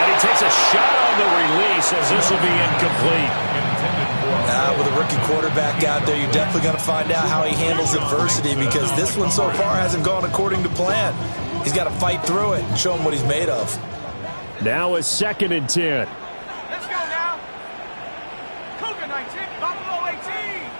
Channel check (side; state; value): both; inverted; correlation -1.00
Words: he takes a shot on the release as this will be incomplete. With a rookie quarterback out there, you're definitely going to find out how he handles adversity because this one so far hasn't gone according to plan. He's got to fight through it and show him what he's made of. Now a 2nd and 10. Let's go now. Cougar 19, Buffalo 18.